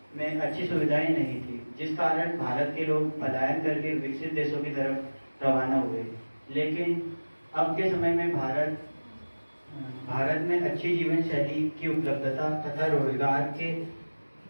में अच्छी सुविधाएं नहीं थी, जिस कारण भारत के लोग पलायन करके विकसित देशों की तरफ रवाना हुए। लेकिन अब के समय में भारत में अच्छी जीवन शैली की उपलब्धता तथा रोजगार के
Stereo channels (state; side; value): inverted; both; correlation -1.00